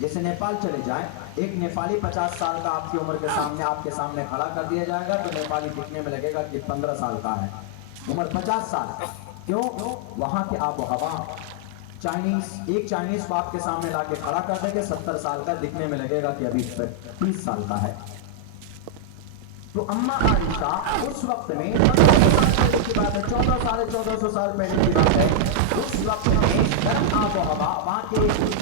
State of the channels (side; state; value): both; different; correlation -0.01